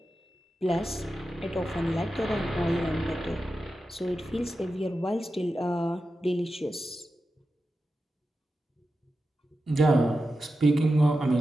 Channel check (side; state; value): both; normal; correlation 0.91